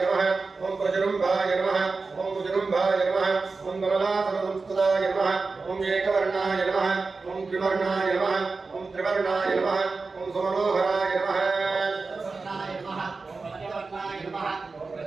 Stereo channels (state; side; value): quieter; left; 4.1 dB